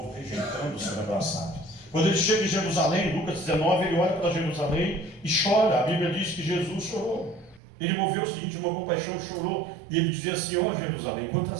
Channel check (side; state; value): left; drops out; at 7.6 s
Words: rejeitando o ser abraçado. Quando ele chega em Jerusalém, Lucas 19, ele olha para Jerusalém e chora. A Bíblia diz que Jesus chorou. Ele moveu-se de íntima compaixão, chorou, e ele dizia assim, ó Jerusalém,